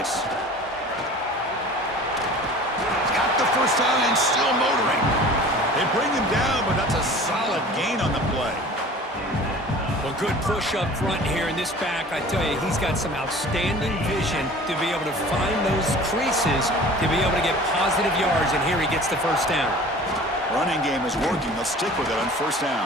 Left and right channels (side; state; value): both; normal; correlation 0.43